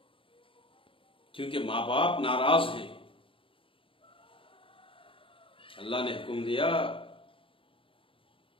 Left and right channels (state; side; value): late; right; 0.25 ms